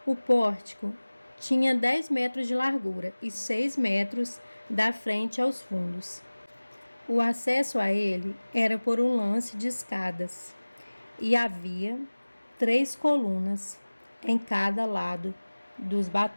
O pórtico tinha 10 metros de largura e 6 metros da frente aos fundos. O acesso a ele era por um lance de escadas e havia 3 colunas em cada lado dos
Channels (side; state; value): both; inverted; correlation -1.00